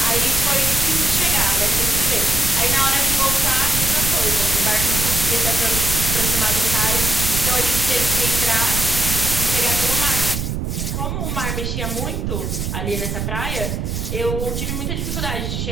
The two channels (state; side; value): noise; right; rumble, 3 dB below the sound